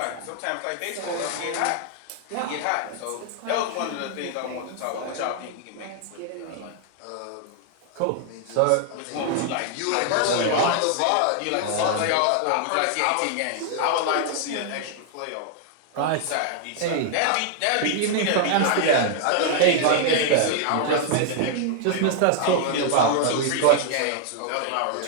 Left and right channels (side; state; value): both; different; correlation 0.00